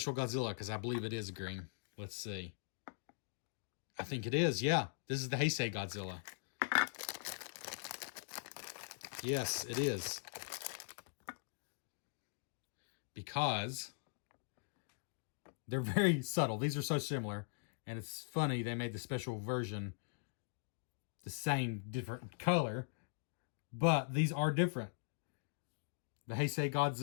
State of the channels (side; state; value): right; silent; digital silence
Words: Godzilla because I believe it is green. Let's see. I think it is. Yeah. This is the Heisei Godzilla. Yes, it is. Because they're very subtle. These are so similar. And it's funny they made the special version the same, different color. But these are different. The Heisei